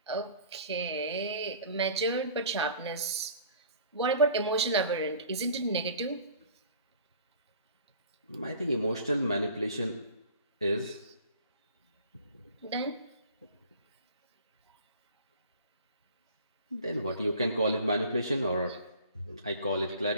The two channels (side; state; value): both; inverted; correlation -0.46